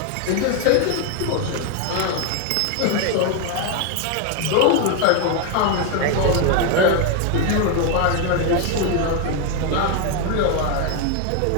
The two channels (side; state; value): both; different; correlation 0.01